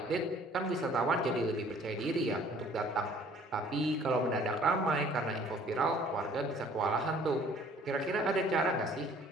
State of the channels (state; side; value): normal; both; correlation 0.55